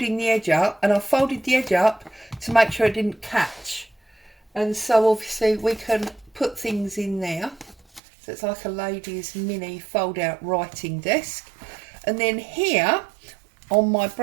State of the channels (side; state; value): left; drops out; at 8.0 s